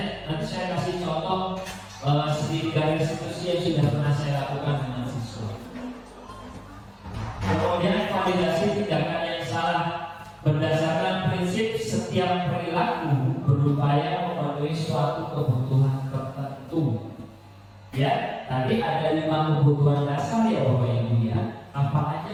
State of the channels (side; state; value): both; identical; correlation 1.00